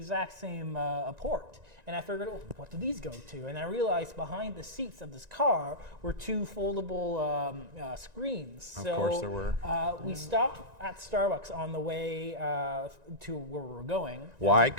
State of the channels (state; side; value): late; left; 1.9 ms